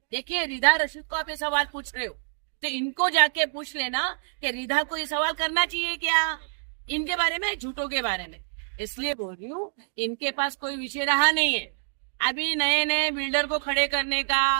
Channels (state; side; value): silent; left; digital silence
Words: देखिए रिधा रशीद को आप ये सवाल पूछ रहे हो, तो इनको जाके पूछ लेना कि रिधा को ये सवाल करना चाहिए क्या इनके बारे में, झूठों के बारे में। इसलिए बोल रही हूँ, इनके पास कोई विषय रहा नहीं है। अभी नए नए बिल्डर को खड़े करने